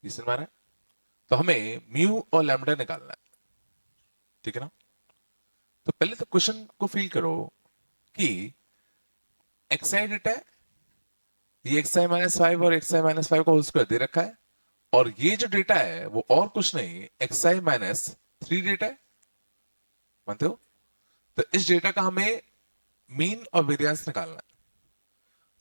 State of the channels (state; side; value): inverted; both; correlation -1.00